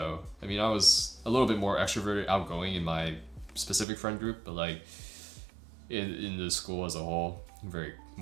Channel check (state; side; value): drops out; left; at 3.9 s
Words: I mean, I was a little bit more extroverted, outgoing in my specific friend group, but like in the school as a whole, I'm very